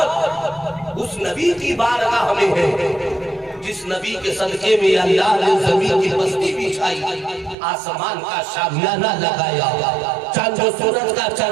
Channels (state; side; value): drops out; left; at 7.6 s